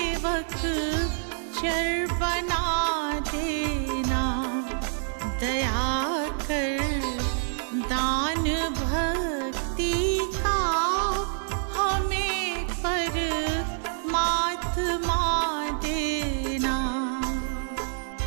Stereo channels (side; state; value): left; silent; 58 dB below the other